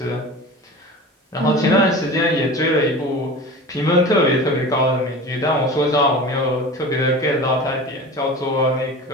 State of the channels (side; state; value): both; normal; correlation 0.35